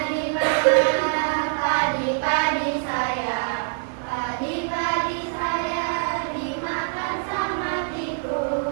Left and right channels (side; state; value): left; silent; digital silence